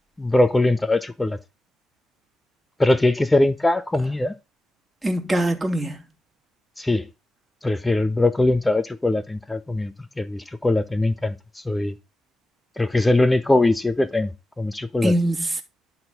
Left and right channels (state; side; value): normal; both; correlation 0.95